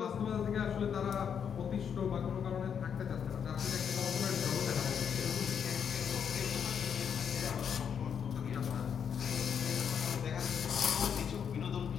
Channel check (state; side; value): quieter; right; 7.6 dB